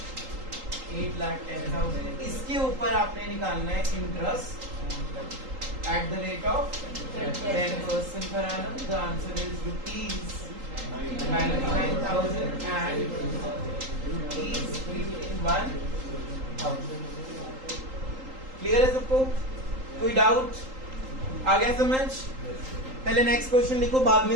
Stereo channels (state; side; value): late; left; 3.8 ms